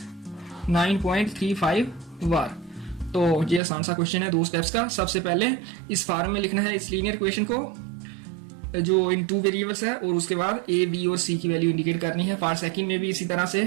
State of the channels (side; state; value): left; drops out; at 3.6 s